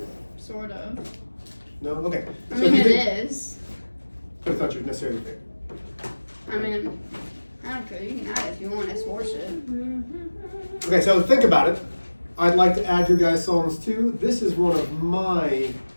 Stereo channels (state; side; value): inverted; both; correlation -1.00